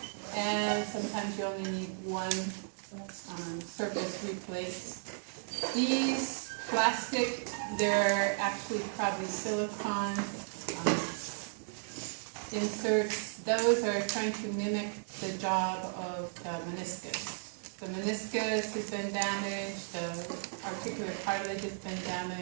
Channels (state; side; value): silent; left; digital silence